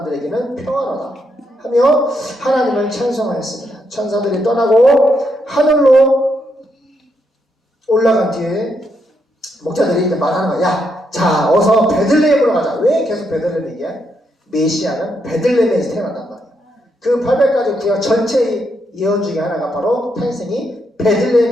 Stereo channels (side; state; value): both; normal; correlation 0.79